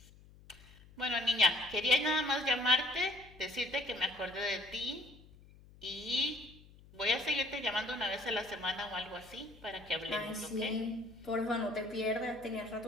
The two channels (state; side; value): noise; left; hum, 23 dB below the sound